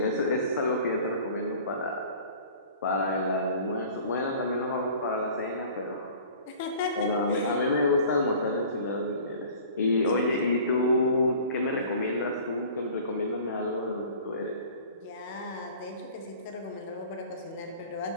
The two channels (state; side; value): inverted; both; correlation -0.46